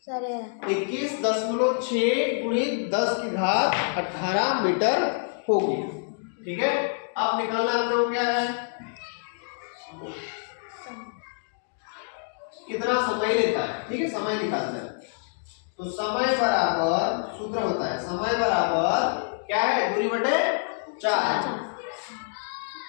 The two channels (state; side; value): silent; right; 60 dB below the other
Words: 21.6 × 10⁻18 मीटर होगी। ठीक है, अब निकालना हम लोग क्या है? कितना समय लेता है। ठीक है, समय निकालना है। तो समय बराबर सूत्र होता है, समय बराबर क्या है? दूरी बटे 4,